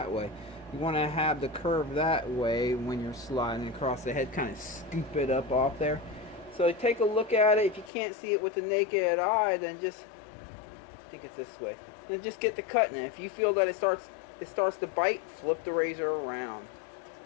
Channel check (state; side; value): drops out; right; at 7.9 s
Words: way. You want to have the curve that way when you're sliding across the head, kind of scoop it up off there. So take a look at it. If you can't see it with the naked eye, then just, I think it's this way, then just get the cutting. If you feel that it starts to bite, flip the razor around.